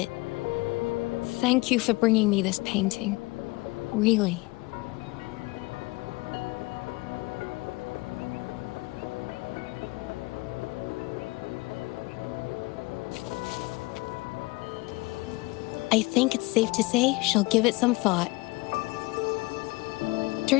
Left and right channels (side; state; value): right; quieter; 23.7 dB